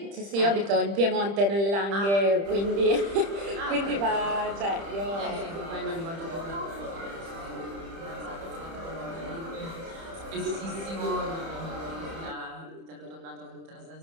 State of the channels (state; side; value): late; left; 30 ms